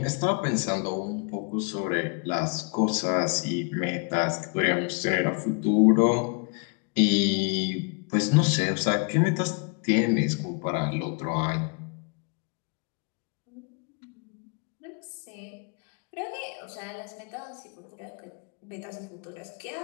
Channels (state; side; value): quieter; right; 35.3 dB